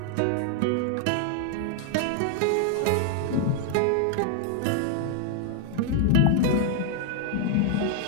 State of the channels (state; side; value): different; both; correlation 0.00